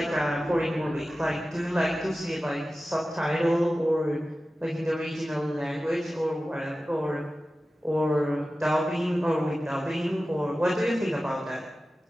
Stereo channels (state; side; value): normal; both; correlation 0.95